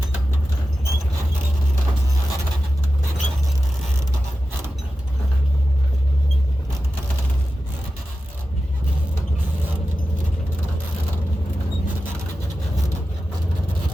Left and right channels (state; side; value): normal; both; correlation 0.92